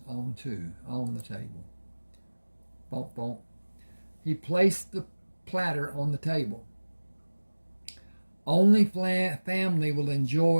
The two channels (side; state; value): both; inverted; correlation -1.00